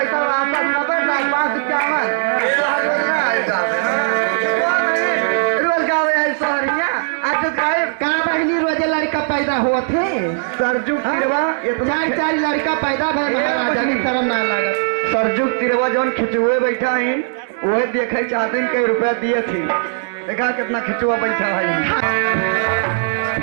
वापस नबर 551 रोजे लड़का पैदा हुआ थे सरजुग तिरवा चार लड़का पैदा भय महाराजा की शर्म ना लगा सरजुग तिरवा जौन खिचुए बैठा है वही देखे चाहते कई रुपया दिए थे देखा कितना खिचुआ बैठा है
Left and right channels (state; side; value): silent; left; digital silence